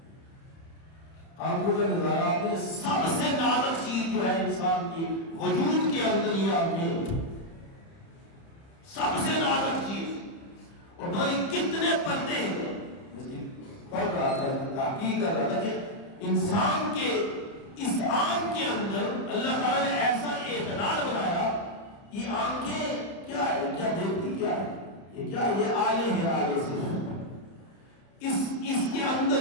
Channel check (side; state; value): right; late; 30 ms